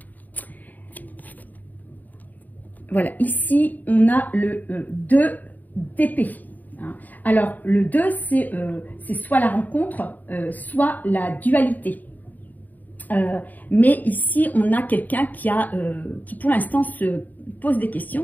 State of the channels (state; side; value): late; right; 0.083 ms